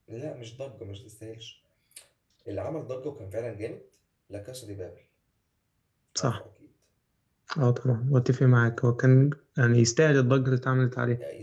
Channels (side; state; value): both; identical; correlation 1.00